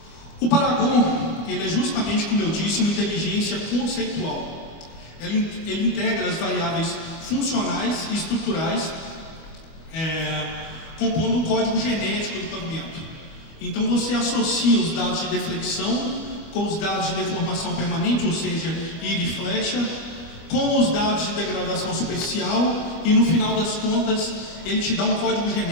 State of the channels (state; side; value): late; right; 25 ms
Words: O Paragon, ele é justamente, como eu disse, uma inteligência conceitual. Ele integra as variáveis funcionais e estruturais, compondo um código genético do pavimento. Então você associa os dados de deflexão com os dados de deformação permanente, ou seja, íris e flecha, com os dados de degradação superficial e no final das contas ele te dá um código